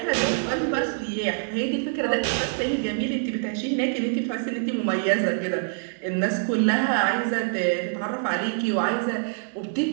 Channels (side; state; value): left; silent; digital silence